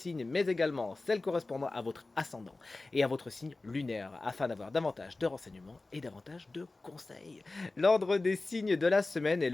mais également celle correspondant à votre ascendant et à votre signe lunaire, afin d'avoir davantage de renseignements et davantage de conseils. L'ordre des signes de la semaine est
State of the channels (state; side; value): quieter; right; 3.3 dB